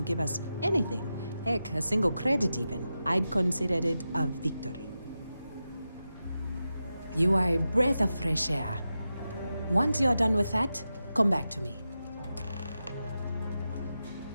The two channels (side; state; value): both; inverted; correlation -0.91